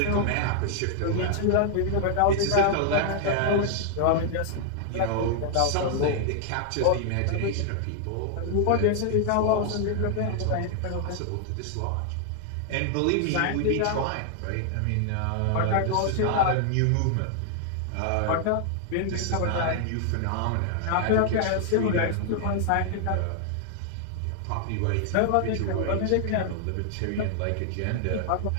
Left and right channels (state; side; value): different; both; correlation 0.00